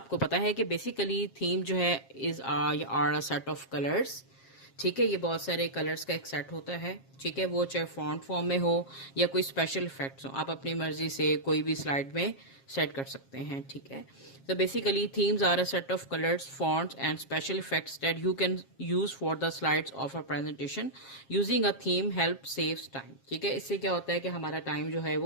पता है कि basically theme जो है are a set of colours, ठीक है। ये बहुत सारे कलर्स का एक सेट होता है, ठीक है। वो चाहे फॉन्ट फॉर्म में हो या कोई स्पेशल इफेक्ट्स हो, आप अपनी मर्जी से कोई भी स्लाइड में सेट कर सकते हैं, ठीक है। तो basically themes are a set of colours, fonts and special effects that you can use for the slides of a presentation. Using a theme help saves time, ठीक है। इससे क्या होता है कि हमारा टाइम जो है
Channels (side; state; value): right; late; 7.4 ms